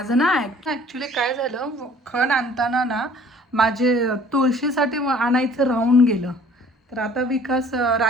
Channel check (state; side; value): normal; both; correlation 0.52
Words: ना ॲक्च्युली काय झालं, खण आणताना ना माझे तुळशीसाठी आणायचं राहून गेलं. तर आता विकास